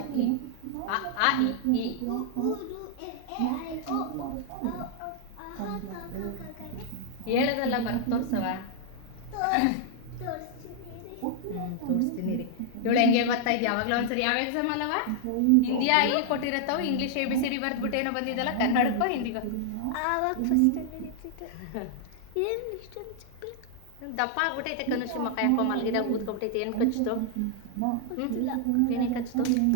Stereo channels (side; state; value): both; different; correlation -0.01